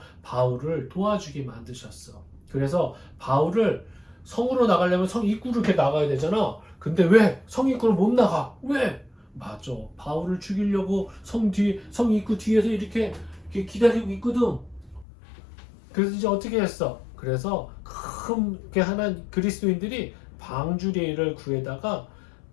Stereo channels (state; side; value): drops out; right; at 15.1 s